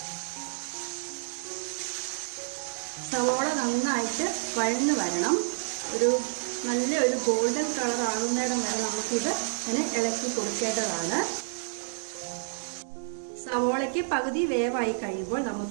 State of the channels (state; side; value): silent; left; digital silence